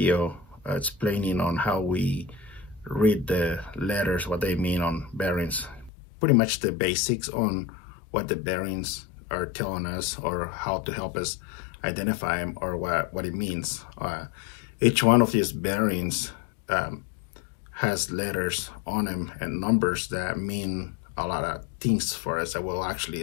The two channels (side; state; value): right; drops out; at 5.9 s